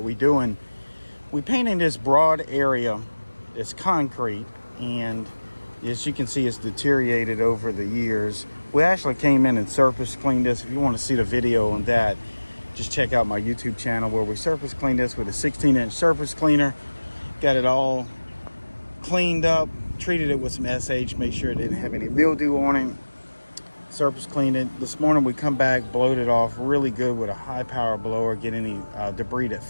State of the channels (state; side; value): inverted; both; correlation -1.00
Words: we're doing. We're painting this broad area. It's concrete, and as you can see, it's deteriorated over the years. We actually came in and surface cleaned this. If you want to see the video on that, just check out my YouTube channel where we surface cleaned this with a 16-inch surface cleaner. Got it all cleaned up, treated it with some SH, make sure it didn't have any mildew on it. Surface cleaned it. This morning we come back, blowed it off really good with a high power blower, get any debris that